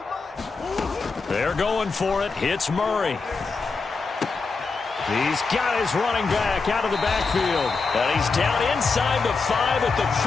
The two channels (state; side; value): quieter; right; 4.4 dB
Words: mine. They're going for it. Hits Murray. He's got his running back out of the backfield. And he's down inside the 5 at the